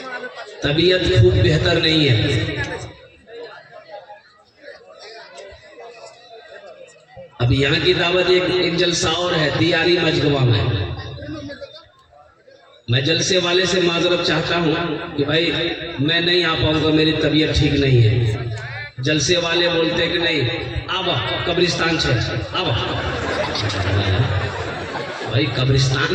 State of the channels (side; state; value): both; identical; correlation 1.00